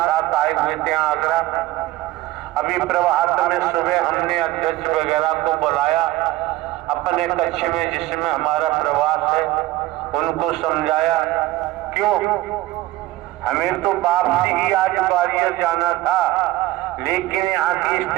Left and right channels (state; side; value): quieter; left; 16.8 dB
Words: आए हुए थे आगरा। अभी प्रभात में सुबह हमने अध्यक्ष वगैरह को बुलाया अपने कक्ष में जिसमें हमारा प्रवास है, उनको समझाया क्यों हमें तो वापसी ही आज ग्वालियर जाना था, लेकिन यहाँ की